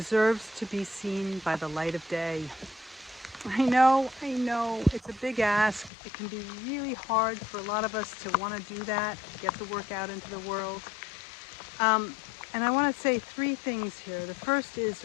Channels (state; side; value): drops out; right; at 5.9 s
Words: to be seen by the light of day. I know, it's a big ask. It can be really hard for a lot of us to want to do that, get the work out into the world. Um, and I want to say three things here. The first is